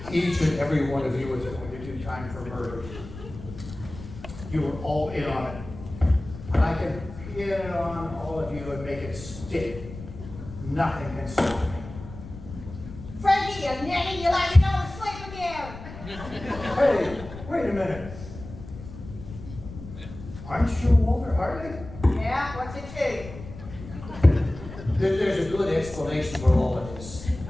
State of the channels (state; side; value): noise; left; rumble, 13 dB below the sound